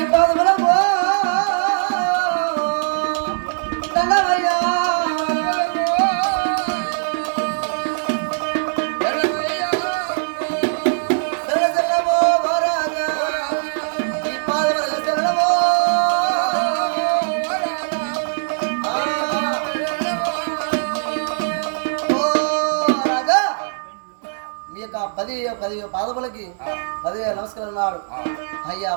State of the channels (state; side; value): silent; left; digital silence